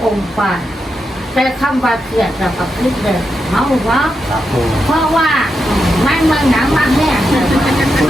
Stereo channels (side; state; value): both; normal; correlation 0.86